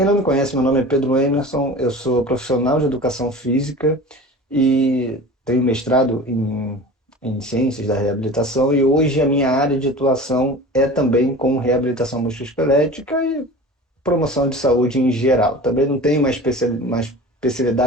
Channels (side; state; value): both; normal; correlation 0.37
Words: não me conhece, meu nome é Pedro Emerson, eu sou profissional de educação física e tenho mestrado em ciências da reabilitação e hoje a minha área de atuação é também com reabilitação musculoesquelética e promoção de saúde em geral. Também não tenho uma